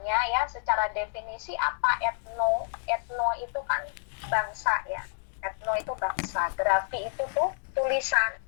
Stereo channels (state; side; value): silent; right; digital silence